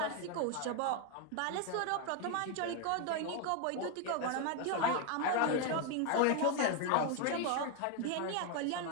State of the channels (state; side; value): different; both; correlation 0.01